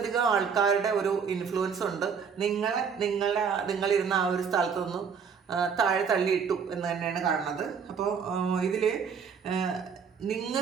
ആൾക്കാരുടെ ഒരു ഇൻഫ്ലുവൻസ് ഉണ്ട്. നിങ്ങളിരുന്ന ആ ഒരു സ്ഥലത്തൊന്നും താഴെ തള്ളിയിട്ടു എന്ന് തന്നെയാണ് കാണുന്നത്. അപ്പോൾ ഇതിൽ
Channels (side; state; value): left; quieter; 6.5 dB